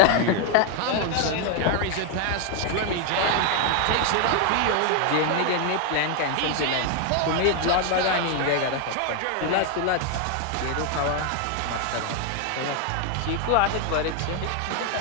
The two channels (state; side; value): different; both; correlation 0.01